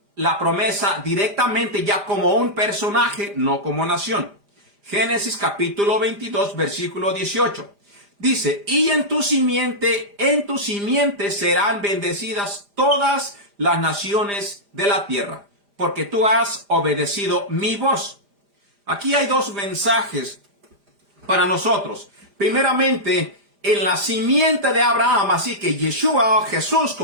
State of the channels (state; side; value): late; left; 5.0 ms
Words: la promesa directamente ya como un personaje, no como nación. Génesis capítulo 22 versículo 18. Dice, y en tu simiente serán bendecidas todas las naciones de la tierra, porque tú has obedecido mi voz. Aquí hay dos mensajes para nosotros. Primeramente, en la simiente de Abraham, así que Yeshua, Jesús,